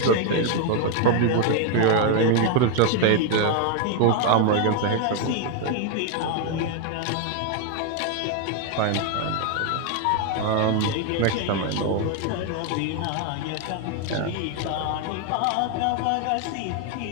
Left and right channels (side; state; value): both; different; correlation 0.01